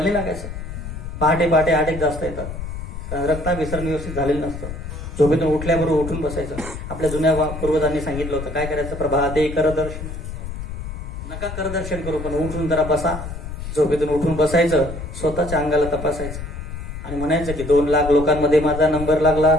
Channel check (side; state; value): left; noise; rumble, 8 dB below the sound